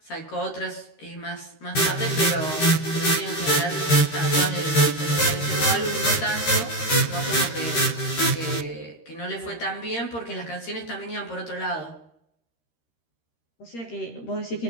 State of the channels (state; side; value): late; right; 13 ms